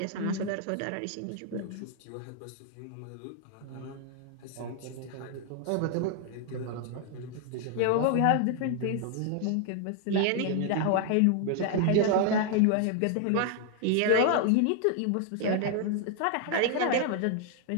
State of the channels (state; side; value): different; both; correlation 0.00